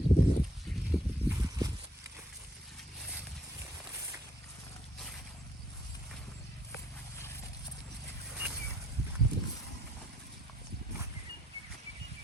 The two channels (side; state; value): both; normal; correlation 0.69